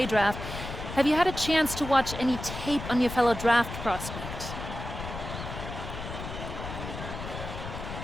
draft. Have you had a chance to watch any tape on your fellow draft prospect?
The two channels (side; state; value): left; noise; rumble, 8 dB below the sound